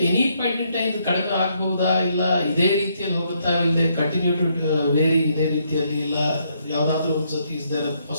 any point in time ಕಡಿಮೆ ಆಗ್ಬಹುದಾ, ಇಲ್ಲ ಇದೇ ರೀತಿಯಲ್ಲಿ ಹೋಗುತ್ತಾ, ಇಲ್ಲದೆ ಕಂಟಿನ್ಯೂ ಟು ವೇರಿ ಇದೇ ರೀತಿಯಲ್ಲಿ, ಇಲ್ಲ ಯಾವುದಾದ್ರೂ ಒಂದ್ಸತಿ is there a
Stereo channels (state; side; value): inverted; both; correlation -0.73